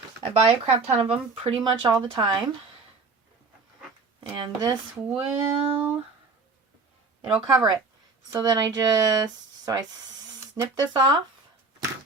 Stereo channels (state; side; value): quieter; left; 4.0 dB